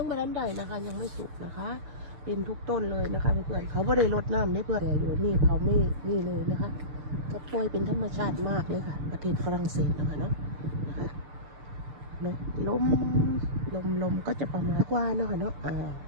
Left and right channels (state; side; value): late; left; 6.7 ms